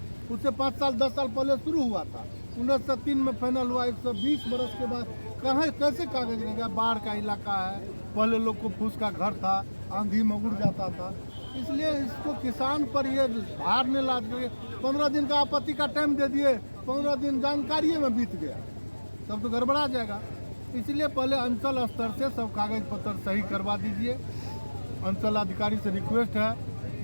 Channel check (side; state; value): both; inverted; correlation -1.00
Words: उससे 5 साल 10 साल पहले शुरू हुआ था, 1903 में फाइनल हुआ। 120 बरस के बाद कहाँ कैसे कागज रहेगा? बाढ़ का इलाका है, पहले लोग को फूस का घर था, आंधी में उड़ जाता था, इसलिए इसको किसान पर ये भार नहीं लाद के 15 दिन का आपत्ति का टाइम दे दिए, 15 दिन जानकारी में बीत गया, तब तो गड़बड़ा जाएगा। इसलिए पहले अंचल स्तर से सब कागज पत्र सही करवा दीजिए। अंचल अधिकारी से रिक्वेस्ट है